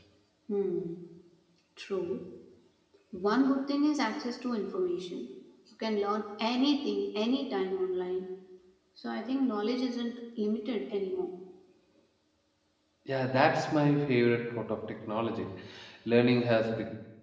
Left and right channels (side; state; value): both; identical; correlation 1.00